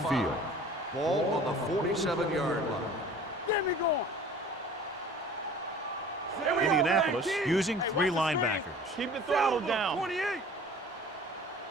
5. Ball on the 47-yard line. Get me going. Indianapolis using 3 linebackers. Keep the throttle Silver, down. 28!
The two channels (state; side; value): normal; both; correlation 0.46